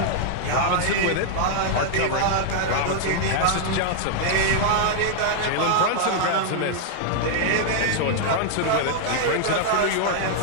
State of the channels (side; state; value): both; different; correlation 0.00